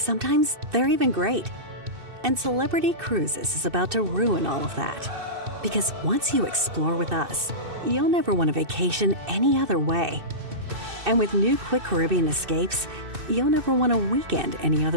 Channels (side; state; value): left; late; 2.6 ms